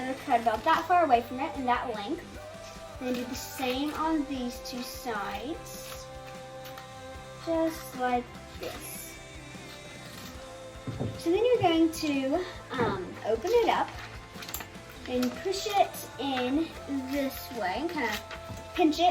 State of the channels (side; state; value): both; identical; correlation 1.00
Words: cut about that far away from it, and that length. And then do the same on these two sides, just like this. So then you're going to open it up and push it in this way and kind of pinch